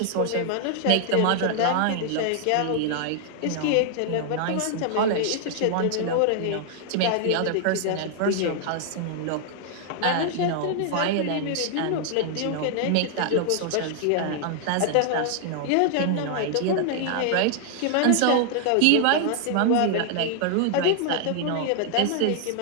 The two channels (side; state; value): both; different; correlation 0.00